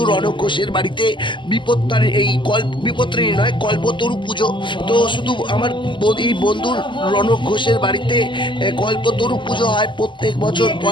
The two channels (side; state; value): right; late; 0.24 ms